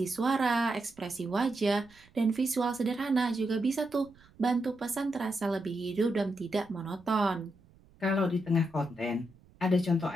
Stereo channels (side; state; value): right; noise; rumble, 28 dB below the sound